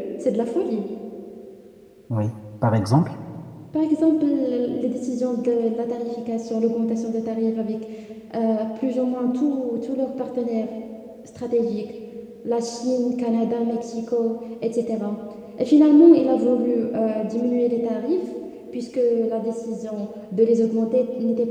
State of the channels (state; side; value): identical; both; correlation 1.00